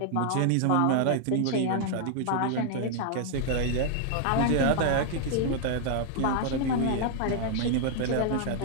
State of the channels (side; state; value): both; different; correlation 0.00